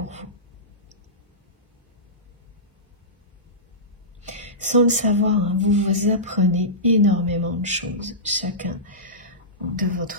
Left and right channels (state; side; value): normal; both; correlation -0.19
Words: vous. Sans le savoir, hein, vous apprenez énormément de choses, chacun de